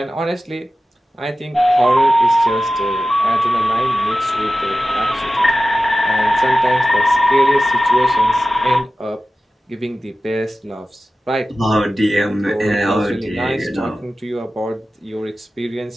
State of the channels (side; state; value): both; normal; correlation 0.94